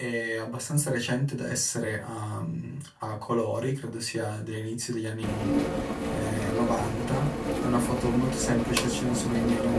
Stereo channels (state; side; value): identical; both; correlation 1.00